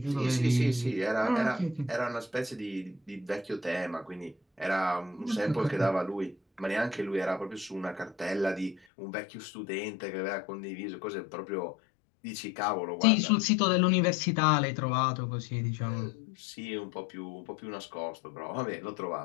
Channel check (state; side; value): drops out; right; at 8.8 s